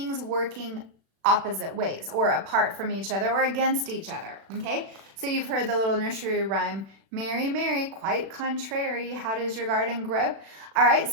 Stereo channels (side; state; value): left; late; 36 ms